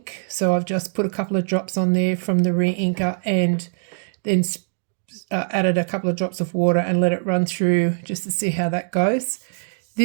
so I've just put a couple of drops on there from the re-inker, and then added a couple of drops of water and let it run through just to see how that goes.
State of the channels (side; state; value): left; silent; digital silence